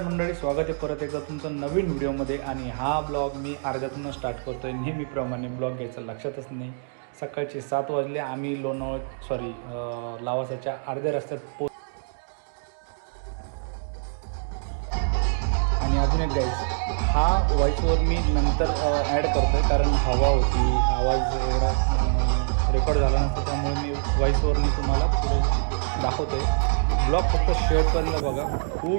मंडळी, स्वागत आहे परत एकदा तुमचं नवीन व्हिडिओमध्ये. आणि हा ब्लॉग मी अर्ध्यातूनच स्टार्ट करतो आहे. नेहमीप्रमाणे ब्लॉग घ्यायचं लक्षातच नाही. सकाळचे 7 वाजले. आम्ही लावासाच्या अर्ध्या रस्त्यात आणि अजून एक गाईज, हा व्हॉईसवर मी नंतर ॲड करतो आहे, कारण हवा होती, आवाज एवढा रेकॉर्ड झाला नसता, त्यामुळे मी व्हॉईसवरनी तुम्हाला पुढे दाखवतो आहे. ब्लॉग फक्त शेवटपर्यंत बघा,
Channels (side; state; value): left; silent; digital silence